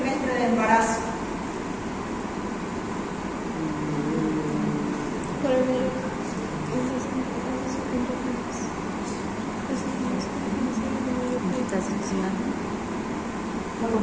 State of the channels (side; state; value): both; identical; correlation 1.00